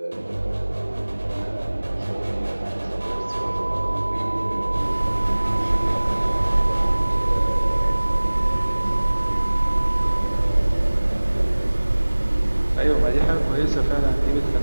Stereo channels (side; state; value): both; inverted; correlation -1.00